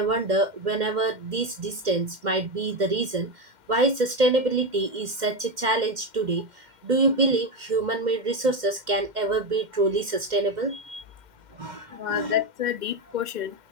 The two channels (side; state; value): left; late; 2.1 ms